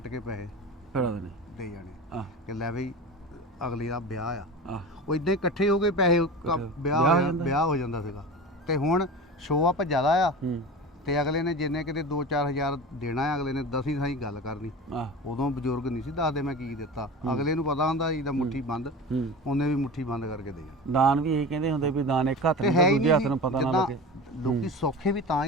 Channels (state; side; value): normal; both; correlation 0.31